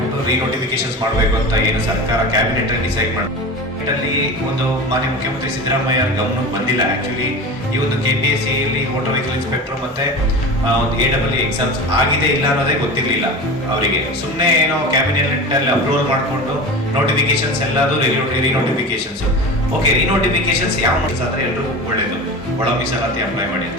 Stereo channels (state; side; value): normal; both; correlation 0.30